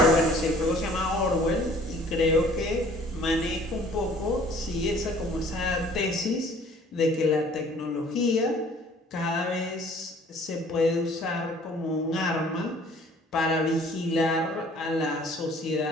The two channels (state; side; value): normal; both; correlation 0.54